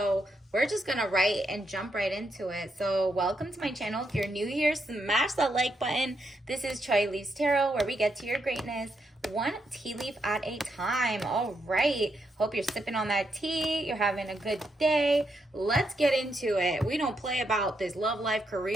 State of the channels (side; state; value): both; normal; correlation 0.80